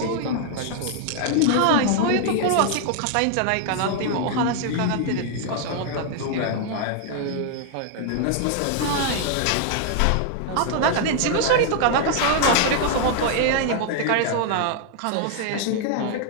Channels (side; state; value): both; different; correlation 0.00